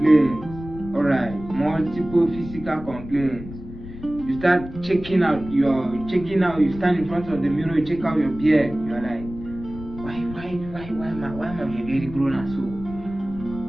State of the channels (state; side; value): noise; left; rumble, 13 dB below the sound